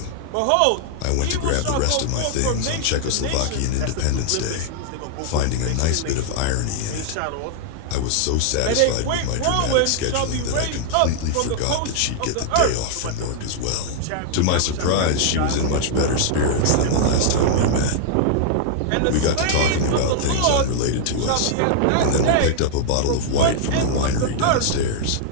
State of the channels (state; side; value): different; both; correlation -0.01